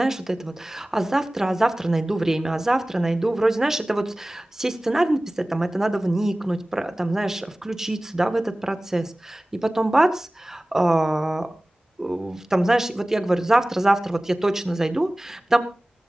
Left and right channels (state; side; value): normal; both; correlation 0.98